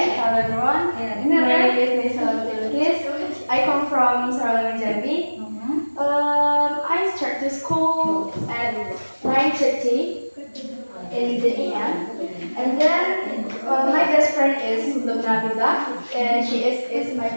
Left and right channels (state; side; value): inverted; both; correlation -1.00